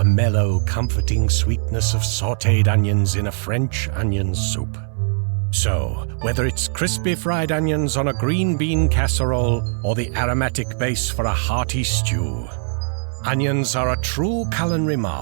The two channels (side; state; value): left; silent; digital silence